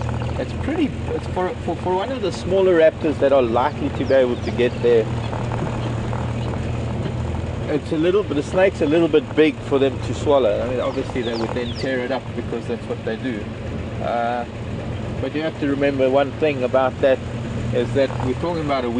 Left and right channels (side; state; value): both; identical; correlation 1.00